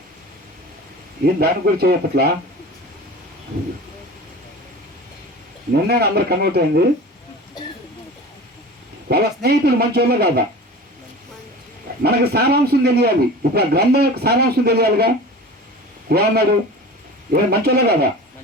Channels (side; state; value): both; normal; correlation 0.36